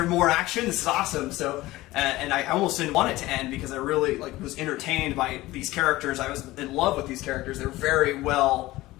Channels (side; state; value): right; quieter; 18.2 dB